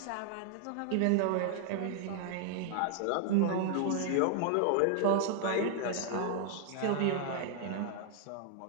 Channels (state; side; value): different; both; correlation 0.00